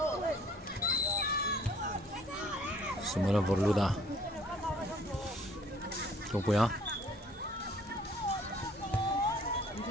Samuelan Vorluda long puya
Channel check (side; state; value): both; normal; correlation 0.57